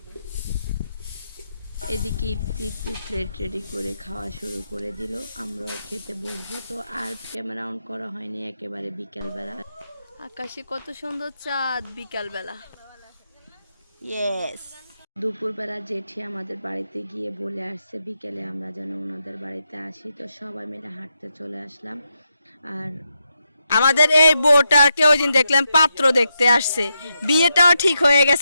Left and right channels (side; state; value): both; inverted; correlation -0.84